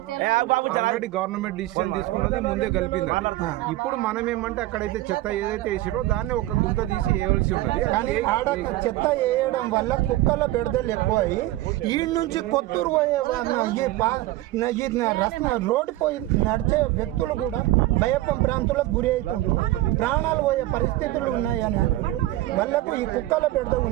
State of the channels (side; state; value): left; quieter; 16.6 dB